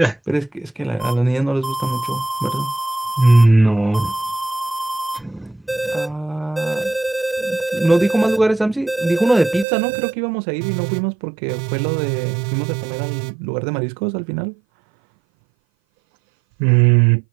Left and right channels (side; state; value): left; drops out; at 9.7 s